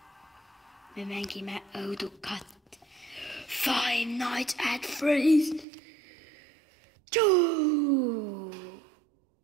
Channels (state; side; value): drops out; left; at 5.7 s